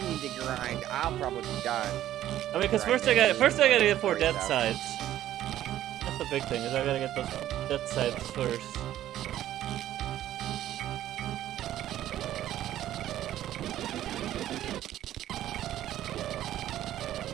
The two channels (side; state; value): left; quieter; 12.7 dB